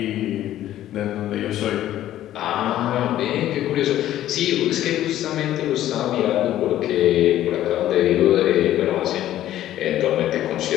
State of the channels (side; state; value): right; quieter; 12.9 dB